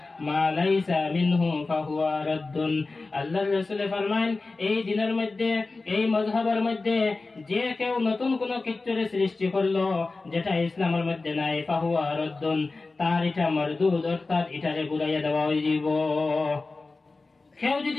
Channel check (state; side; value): quieter; right; 3.6 dB